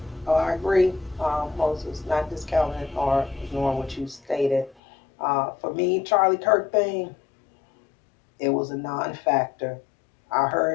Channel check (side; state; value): right; drops out; at 4.8 s